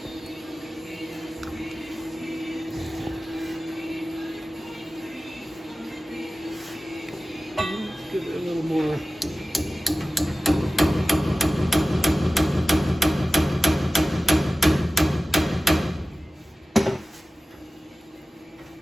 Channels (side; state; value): both; normal; correlation 0.96